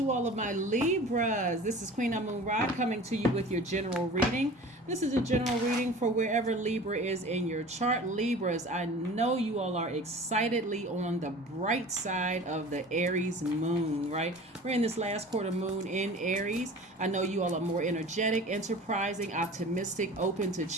all of my Libras. This is Queen Amun Ra coming to you with your general reading. This is a general reading for wherever Libra is in your chart. Libras, I know you all are excitedly on the bright side of the Aries moon, right? We're in this last quarter moon in Aries. I know you all are more energetic, enterprising, optimistic, open to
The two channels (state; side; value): normal; both; correlation 0.40